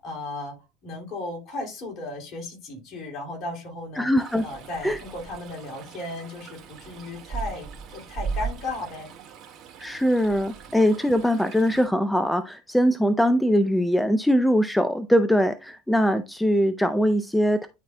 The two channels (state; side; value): normal; both; correlation 0.88